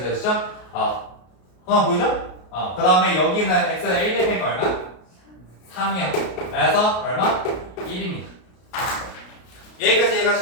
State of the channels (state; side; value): late; right; 33 ms